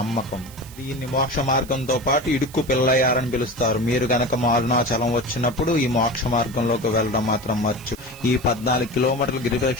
దీన్ని మోక్ష మార్గంతో పాటు ఇడుక్కు పిల్లయ్యారని పిలుస్తారు. మీరు గనక అరుణాచలం వచ్చినప్పుడు ఈ మోక్ష మార్గంలోకి వెళ్లడం మాత్రం మర్చి. ఈ 14 కిలోమీటర్ల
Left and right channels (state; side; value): noise; right; hiss, 19 dB below the sound